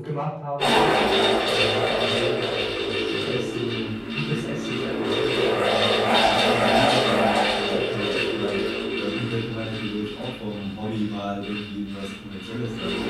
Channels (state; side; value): identical; both; correlation 1.00